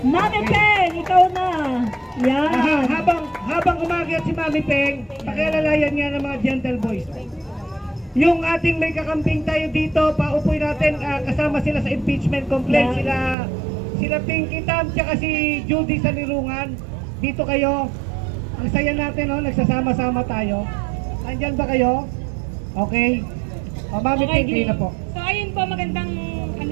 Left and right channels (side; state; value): left; drops out; at 13.4 s